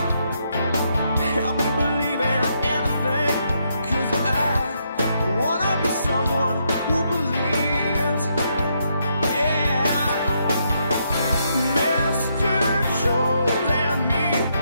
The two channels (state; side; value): inverted; both; correlation -0.77